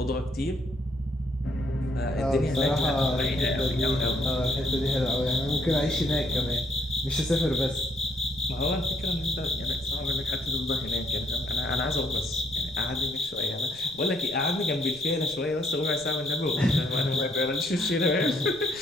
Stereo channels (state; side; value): noise; right; rumble, 19 dB below the sound